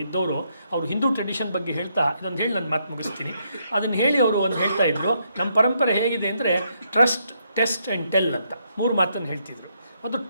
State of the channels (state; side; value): inverted; both; correlation -0.76